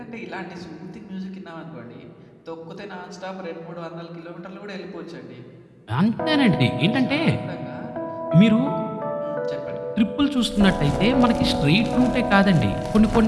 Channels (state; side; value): identical; both; correlation 1.00